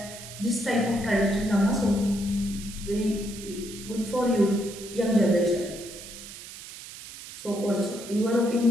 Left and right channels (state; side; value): noise; right; hiss, 13 dB below the sound